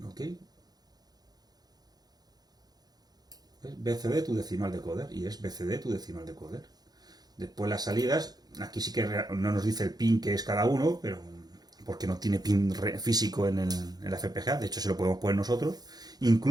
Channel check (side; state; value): left; late; 0.19 ms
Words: ¿Ok? ¿Ves? BCD tu decimal decoder. Y es BCD tu decimal decoder. Después las salidas. Aquí sí que no nos dice el pin que es cada uno, pero porque no tiene pin físico en la FPGA. De hecho, se lo podemos poner nosotros.